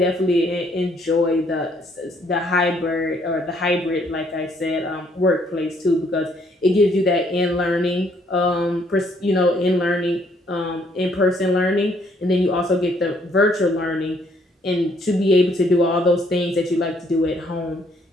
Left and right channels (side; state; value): both; normal; correlation 0.67